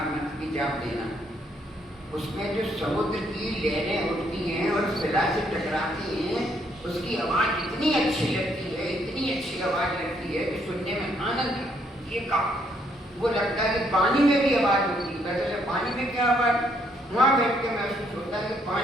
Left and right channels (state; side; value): normal; both; correlation 0.71